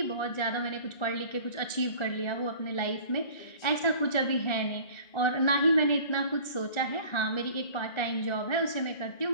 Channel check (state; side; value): late; right; 1.9 ms